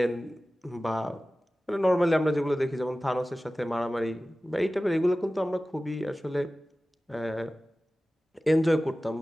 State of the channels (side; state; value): both; normal; correlation 0.96